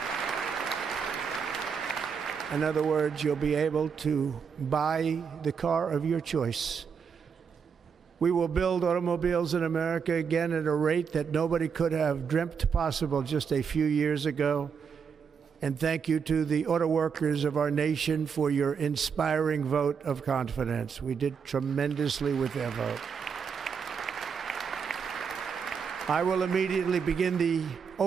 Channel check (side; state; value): left; quieter; 6.4 dB